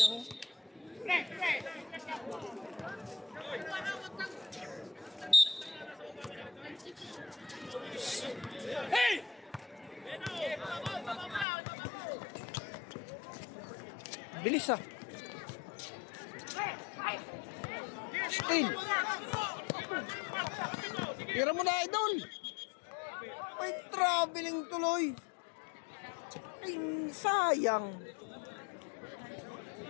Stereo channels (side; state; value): right; drops out; at 11.5 s